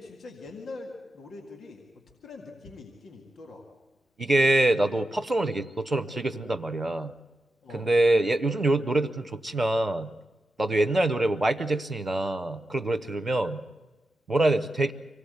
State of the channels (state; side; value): normal; both; correlation 0.89